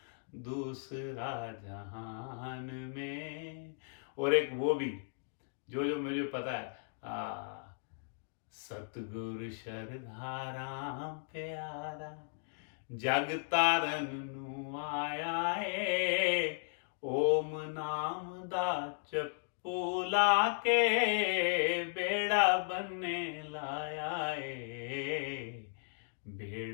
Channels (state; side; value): silent; right; digital silence